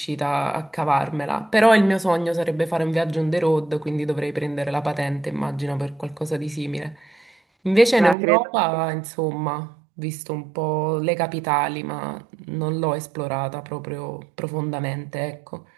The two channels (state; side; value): drops out; left; at 8.2 s